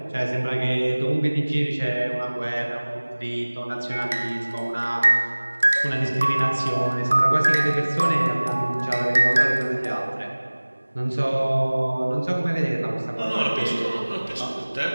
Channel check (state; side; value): inverted; both; correlation -1.00